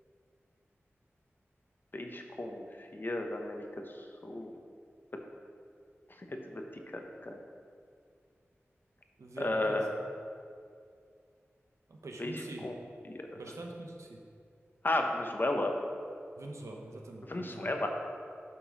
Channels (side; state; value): both; normal; correlation 0.86